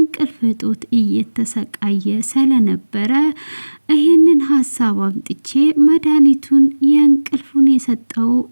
እጦት እየተሰቃየ ስለነበረ ይህንን ሀሳብ አምጥቼ መድኃኒቱን የእንቅልፉን የሰጠው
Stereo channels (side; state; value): both; inverted; correlation -1.00